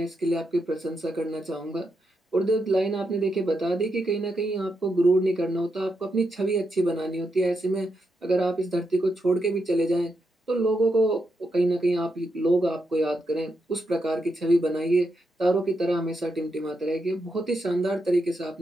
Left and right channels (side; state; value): both; normal; correlation 0.83